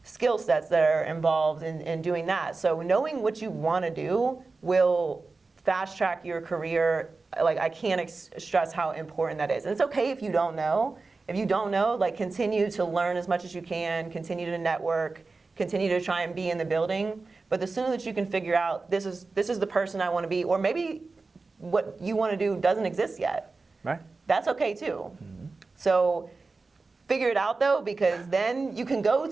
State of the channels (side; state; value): left; quieter; 3.9 dB